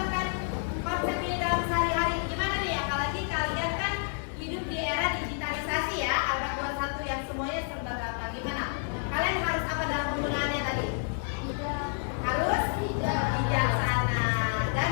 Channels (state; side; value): silent; right; 58 dB below the other